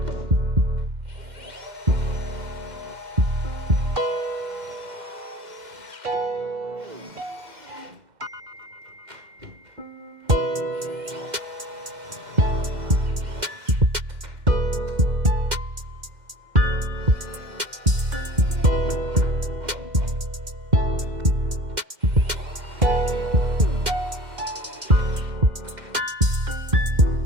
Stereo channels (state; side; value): late; left; 2.1 ms